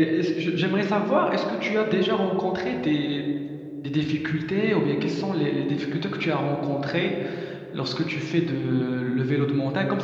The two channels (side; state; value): both; identical; correlation 1.00